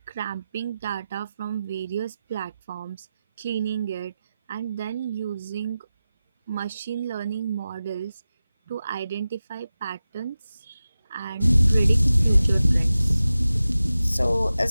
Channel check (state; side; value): inverted; both; correlation -0.94